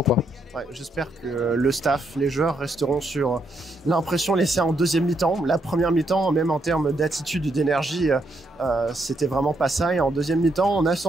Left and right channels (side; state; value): both; normal; correlation 0.77